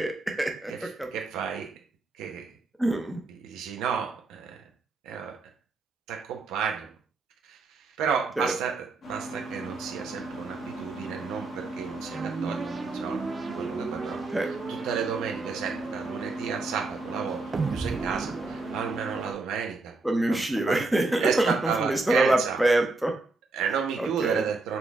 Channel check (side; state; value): left; quieter; 3.4 dB